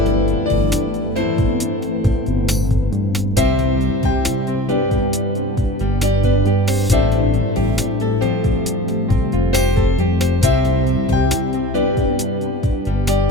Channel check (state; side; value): normal; both; correlation 0.40